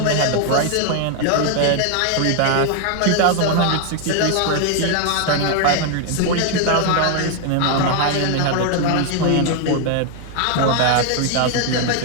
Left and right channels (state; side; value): different; both; correlation 0.00